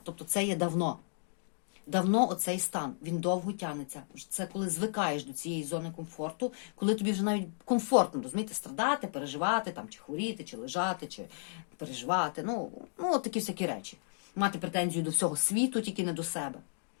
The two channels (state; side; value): silent; right; digital silence